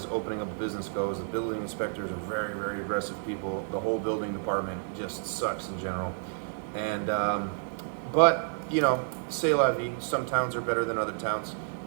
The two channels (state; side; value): silent; left; digital silence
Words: opening up a business goes. The building inspectors are very, very aggressive people. The whole building department just sucks in general. And but c'est la vie. Some towns are better than other towns.